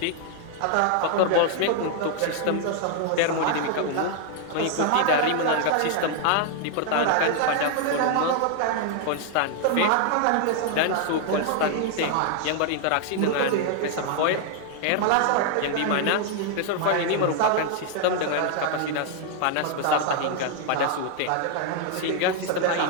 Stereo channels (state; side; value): different; both; correlation 0.00